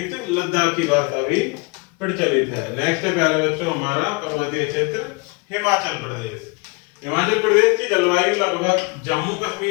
लद्दाखी भाषा भी प्रचलित है। नेक्स्ट है प्यारे बच्चों हमारा पर्वतीय क्षेत्र हिमाचल प्रदेश। हिमाचल प्रदेश की जलवायु लगभग जम्मू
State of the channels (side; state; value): right; quieter; 29.4 dB